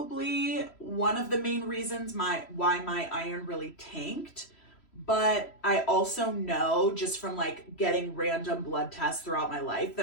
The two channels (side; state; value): right; late; 3.1 ms